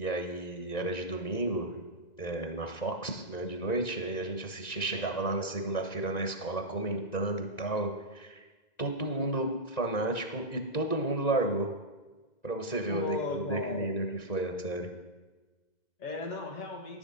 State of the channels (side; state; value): right; late; 1.9 ms